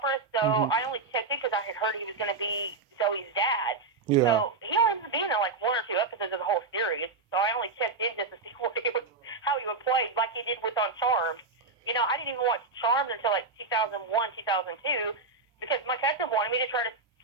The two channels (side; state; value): left; quieter; 3.9 dB